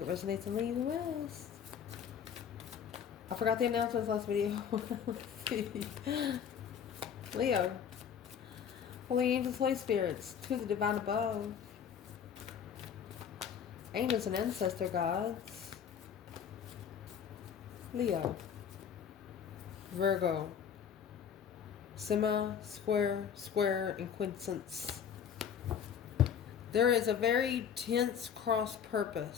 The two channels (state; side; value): quieter; right; 7.9 dB